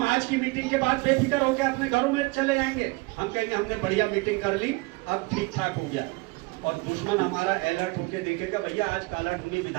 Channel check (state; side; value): quieter; left; 25.6 dB